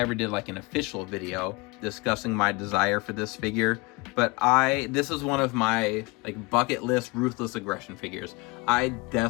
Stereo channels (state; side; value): quieter; right; 26.0 dB